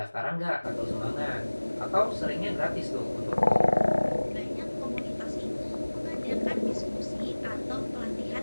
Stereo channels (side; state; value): both; inverted; correlation -1.00